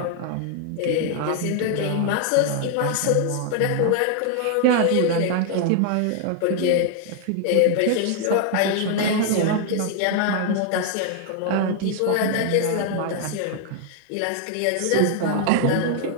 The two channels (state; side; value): different; both; correlation 0.00